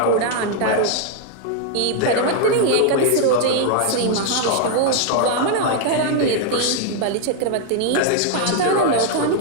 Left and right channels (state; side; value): different; both; correlation 0.00